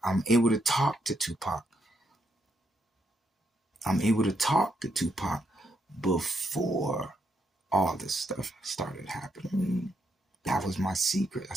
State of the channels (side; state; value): both; normal; correlation 0.79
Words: I'm able to talk to Tupac. I'm able to talk to Tupac before all this stuff started happening. That was my secret.